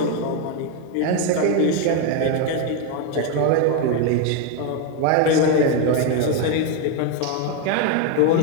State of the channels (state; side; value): different; both; correlation 0.02